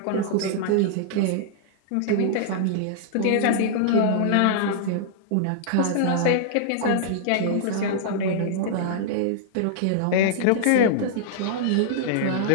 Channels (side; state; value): both; different; correlation -0.01